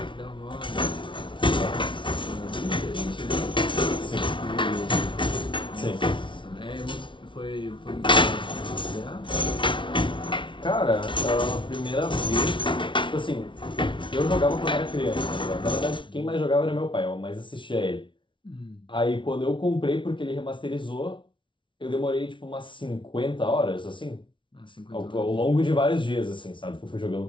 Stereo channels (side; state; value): right; late; 0.24 ms